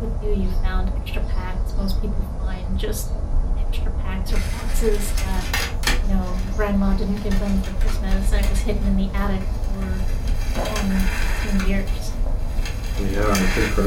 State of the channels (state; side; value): identical; both; correlation 1.00